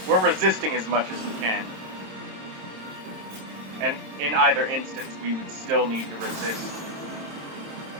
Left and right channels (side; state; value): left; late; 27 ms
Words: we're resisting as much as we can. And in either instance, we would still need to resist